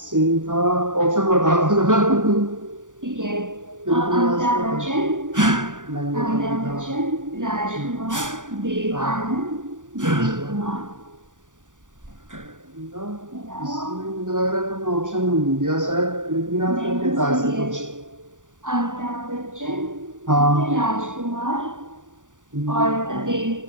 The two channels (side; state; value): left; late; 0.87 ms